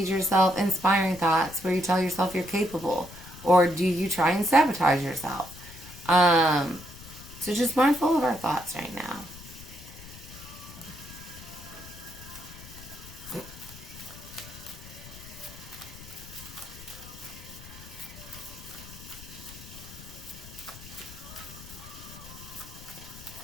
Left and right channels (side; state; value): left; noise; rumble, 16 dB below the sound